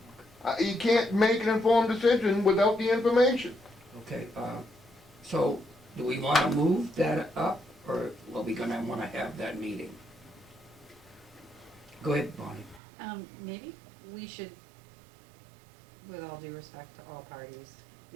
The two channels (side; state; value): left; drops out; at 12.8 s